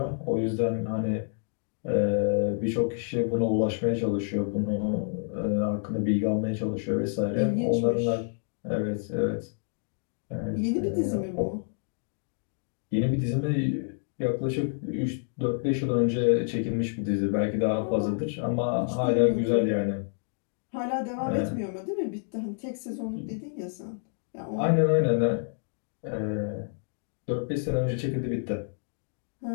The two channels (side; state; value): right; silent; digital silence